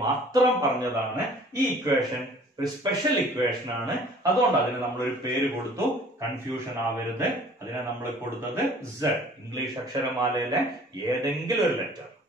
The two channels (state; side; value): normal; both; correlation 0.51